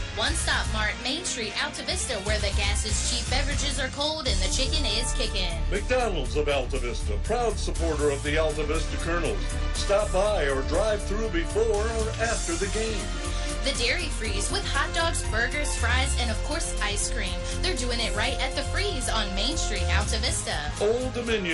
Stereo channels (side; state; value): both; identical; correlation 1.00